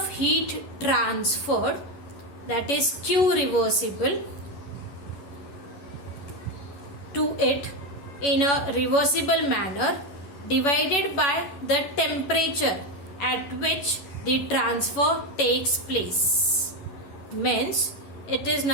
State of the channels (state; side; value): late; right; 11 ms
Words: heat transferred, that is Q reversible, to it in a reversible manner, divided by the temperature at which the transfer takes place. Means it is